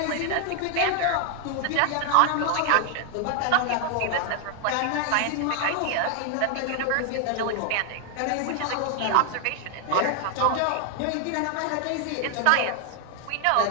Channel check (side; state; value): both; different; correlation 0.00